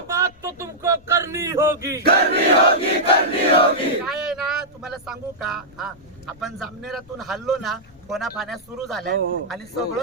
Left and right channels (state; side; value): noise; left; rumble, 26 dB below the sound